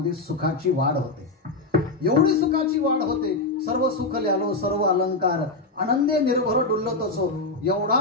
सुखाची वाढ होते. एवढी सुखाची वाढ होते, सर्व सुख ल्यालो सर्व अलंकार, आनंदे निर्भर डुलतोसो. एवढा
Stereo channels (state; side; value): quieter; right; 3.2 dB